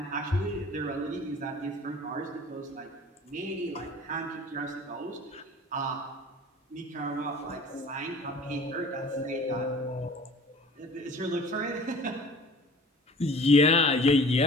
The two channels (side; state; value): both; normal; correlation 0.46